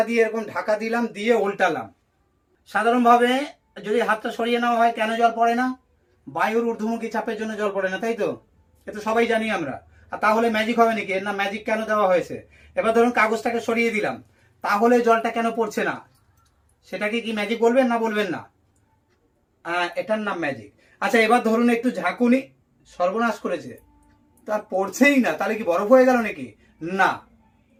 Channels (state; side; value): identical; both; correlation 1.00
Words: দিয়ে এরকম ঢাকা দিলাম, দিয়ে উল্টালাম। সাধারণভাবে যদি হাতটা সরিয়ে নেওয়া হয়, কেন জল পড়ে না? বায়ুর ঊর্ধ্বমুখী চাপের জন্য জল পড়ে না, তাই তো? এ তো সবাই জানি আমরা। আর তাহলে ম্যাজিক হবে নাকি? এর না ম্যাজিক কেন দেওয়া হয়েছে? এবার ধরুন কাগজটাকে সরিয়ে দিলাম, তাহলে জলটা কেন পড়ছে না? সেটাকে কি ম্যাজিক বলবেন না বলবেন না? এটার নাম ম্যাজিক। আচ্ছা, এবার ধরুন একটু ঝাঁকুনি, সর্বনাশ করেছে, তার পড়ছেই না, তাহলে কি বরফ হয়ে গেল নাকি? না।